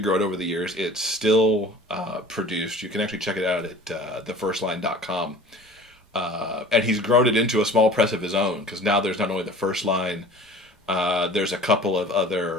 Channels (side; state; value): both; normal; correlation 0.43